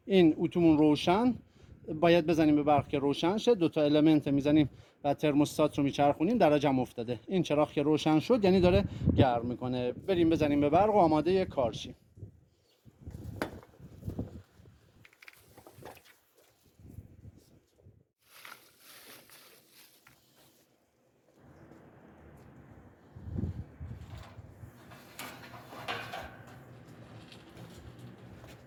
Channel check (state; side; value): identical; both; correlation 1.00